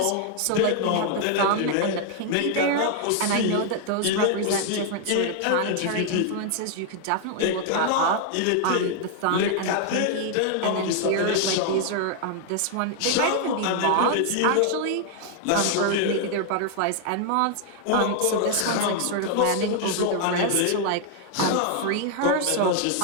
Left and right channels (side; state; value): both; different; correlation 0.00